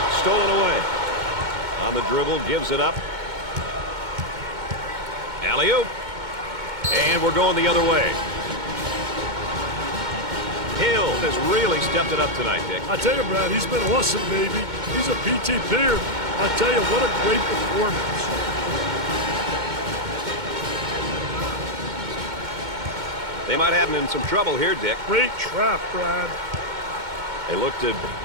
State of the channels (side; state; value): left; late; 2.2 ms